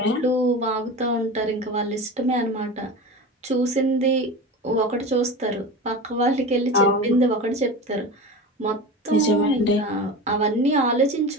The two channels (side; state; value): both; normal; correlation 0.29